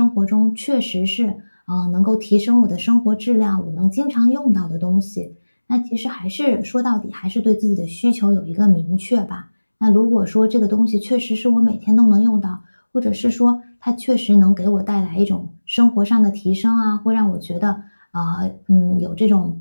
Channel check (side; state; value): both; inverted; correlation -1.00